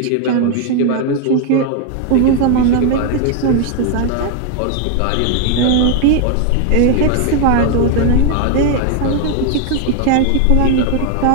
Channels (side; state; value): both; different; correlation 0.00